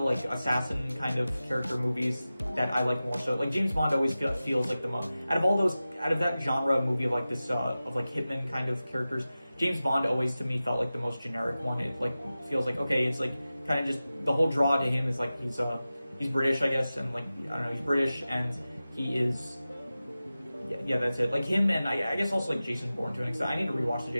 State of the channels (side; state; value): both; inverted; correlation -0.95